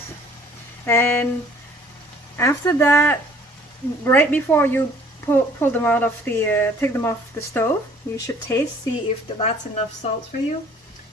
And after that, right before you pull them out of the, take them off the stove, you should taste, see if that's enough salt for you.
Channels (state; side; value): normal; both; correlation 0.56